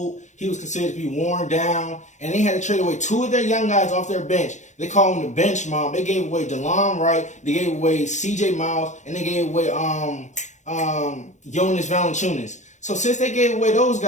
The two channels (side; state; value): right; late; 0.34 ms